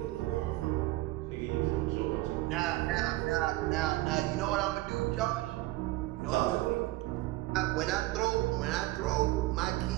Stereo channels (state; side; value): quieter; left; 18.4 dB